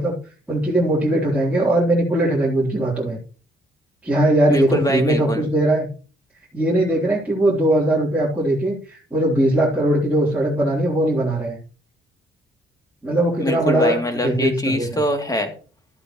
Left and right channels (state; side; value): normal; both; correlation 0.67